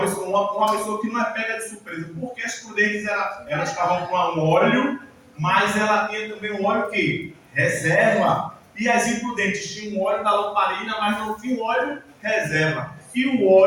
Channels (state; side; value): identical; both; correlation 1.00